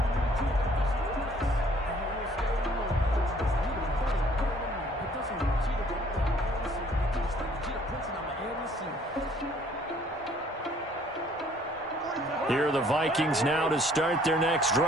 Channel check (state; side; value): normal; both; correlation 0.59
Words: Here are the Vikings now to start their next